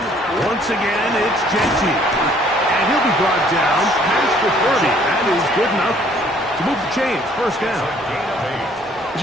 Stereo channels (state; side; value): normal; both; correlation 0.60